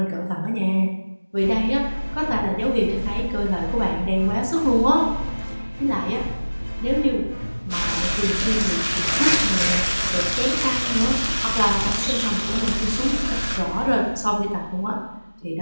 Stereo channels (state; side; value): inverted; both; correlation -1.00